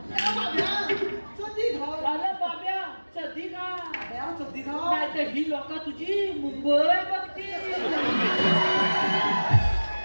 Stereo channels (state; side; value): inverted; both; correlation -1.00